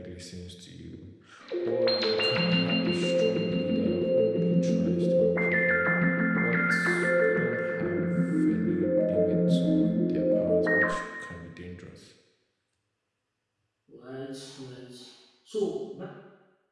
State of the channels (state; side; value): identical; both; correlation 1.00